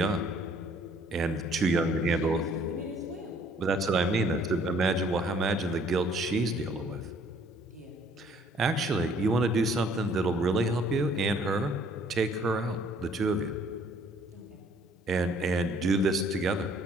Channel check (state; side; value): normal; both; correlation 0.60